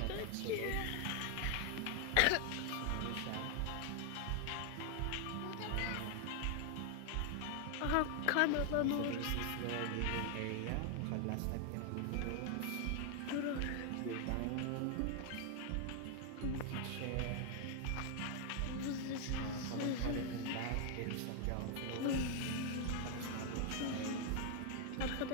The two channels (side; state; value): both; different; correlation 0.00